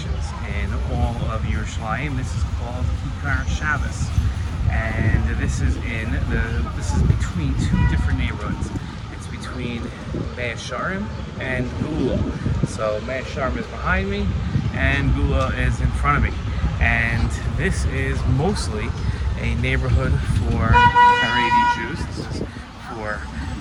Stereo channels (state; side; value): identical; both; correlation 1.00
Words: in all of Yerushalayim. This is called Kikar Shabbos, and this is between two different neighborhoods. It's between Meah Shearim and Gula. So Meah Shearim is behind me, and Gula is in front of me. And this is mostly a neighborhood for Haredi Jews. This is for